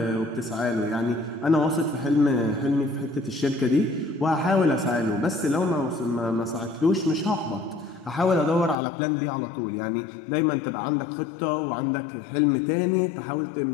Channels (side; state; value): right; drops out; at 8.8 s